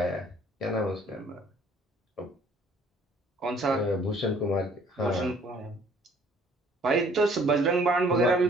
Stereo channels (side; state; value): both; normal; correlation 0.58